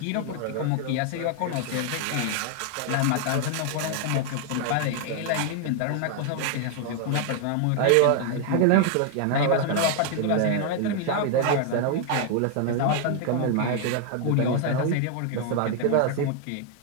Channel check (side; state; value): both; different; correlation 0.00